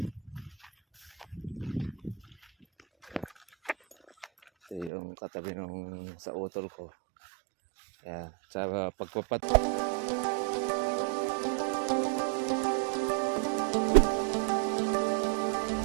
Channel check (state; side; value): drops out; left; at 4.9 s